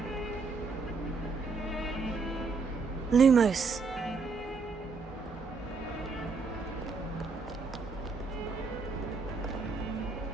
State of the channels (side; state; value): left; quieter; 4.4 dB